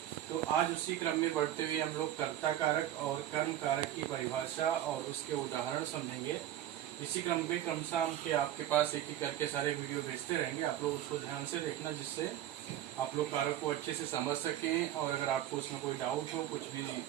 तो आज उसी क्रम में बढ़ते हुए हम लोग कर्ता कारक और कर्म कारक की परिभाषा और उसके उदाहरण समझेंगे। इसी क्रम में क्रमशः हम के आपके पास एक एक करके सारे वीडियो भेजते रहेंगे। आप लोग उसको ध्यान से देखना, जिससे आप लोग कारक को अच्छे से समझ सकें। और अगर आपको उसमें कोई डाउट हो, कुछ भी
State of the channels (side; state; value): left; quieter; 12.3 dB